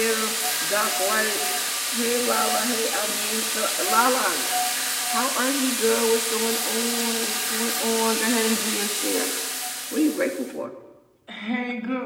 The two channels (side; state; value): both; identical; correlation 1.00